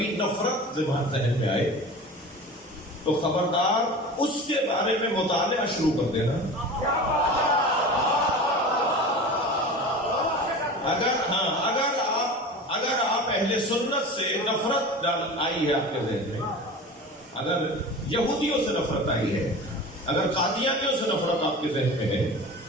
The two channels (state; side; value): normal; both; correlation 0.34